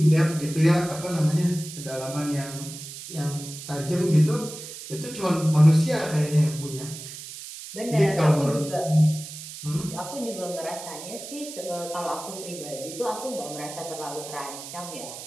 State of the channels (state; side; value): noise; right; hiss, 12 dB below the sound